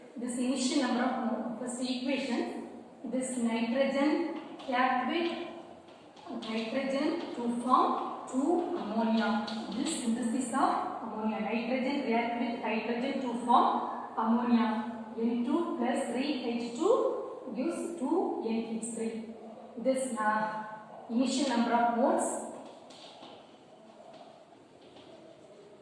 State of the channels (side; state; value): both; identical; correlation 1.00